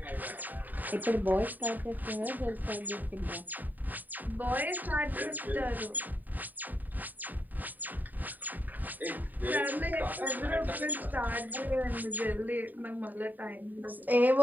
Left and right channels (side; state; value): left; late; 0.087 ms